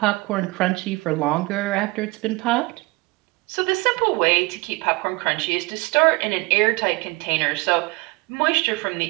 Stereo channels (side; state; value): left; quieter; 24.4 dB